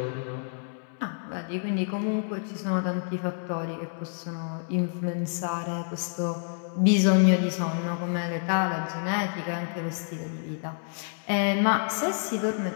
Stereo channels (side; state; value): right; silent; 59 dB below the other